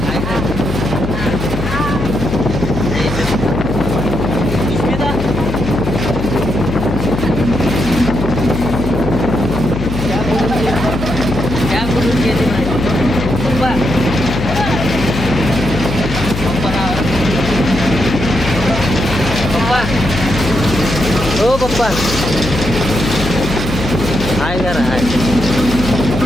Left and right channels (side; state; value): left; noise; hum, 5 dB below the sound